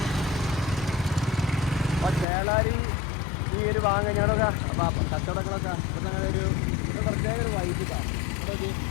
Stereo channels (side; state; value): right; drops out; at 2.2 s